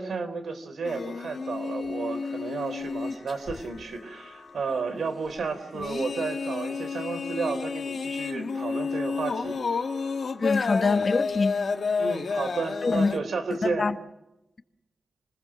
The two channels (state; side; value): normal; both; correlation 0.88